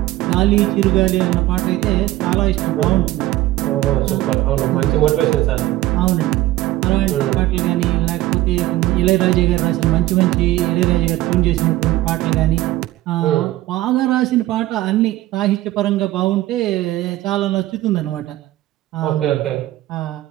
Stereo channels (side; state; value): left; quieter; 16.1 dB